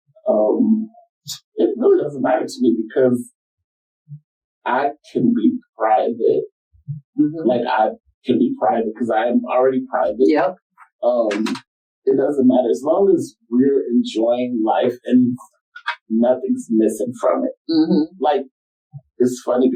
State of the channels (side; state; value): both; identical; correlation 1.00